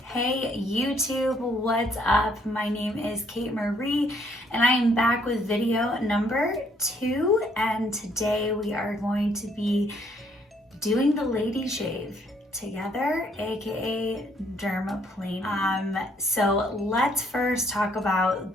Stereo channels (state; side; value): normal; both; correlation 0.67